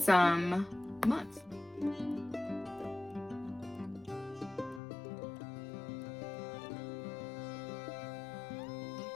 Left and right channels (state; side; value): drops out; right; at 4.8 s